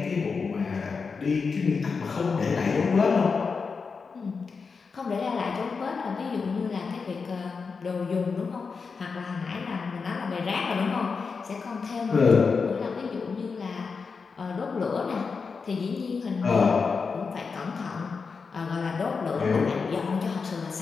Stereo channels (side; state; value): right; quieter; 5.0 dB